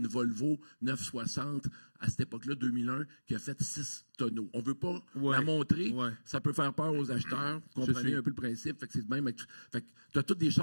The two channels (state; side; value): inverted; both; correlation -1.00